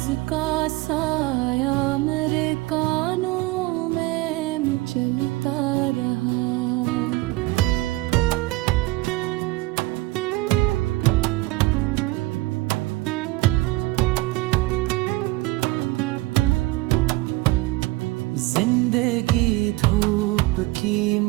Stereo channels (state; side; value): quieter; left; 20.1 dB